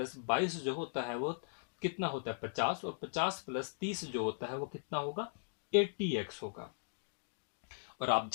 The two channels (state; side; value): silent; right; digital silence